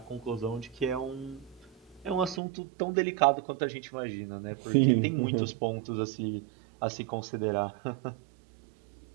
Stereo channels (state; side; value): drops out; left; at 2.4 s